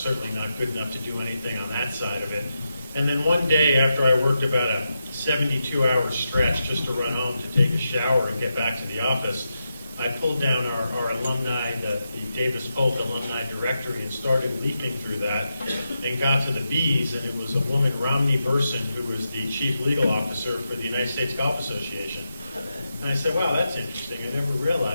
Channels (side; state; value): both; inverted; correlation -0.87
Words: not good enough to do anything on that side of it. And then one day after I worked about a 72-hour stretch just to run home to take a shower and get back to the office, I pulled down our alumni, the Davis Polk alumni directory, and started leafing through that and got to the B's, and it was a woman, Romney Burson, who was the chief legal officer for the United States Golf Association. And I said, wow, that's interesting. I never